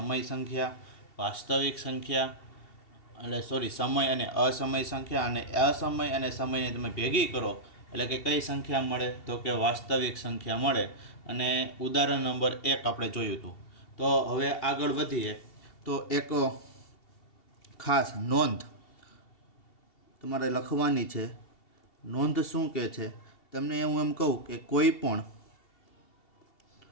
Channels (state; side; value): late; right; 2.7 ms